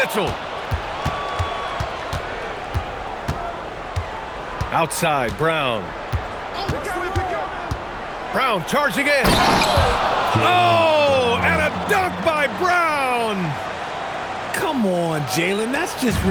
Outside, Brown. Brown charging in. Oh, and a dunk by Brown. Come on, Jalen. That's just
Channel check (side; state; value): both; identical; correlation 1.00